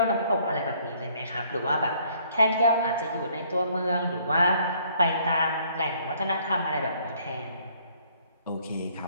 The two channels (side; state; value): both; inverted; correlation -0.62